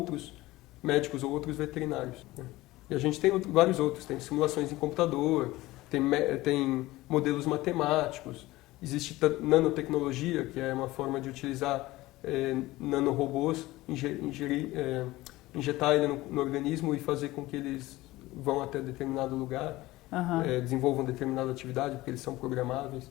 médicos ou outros veterinários, né? E a gente tem vários outros, tem simulações em computador, tem modelos matemáticos, existe nanotecnologia, que é uma forma de utilizar nanorobôs, injetar ele no organismo e fazer com que eles vão até determinado lugar, desenvolvam determinada atividade, porque eles são programáveis.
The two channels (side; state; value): right; quieter; 18.4 dB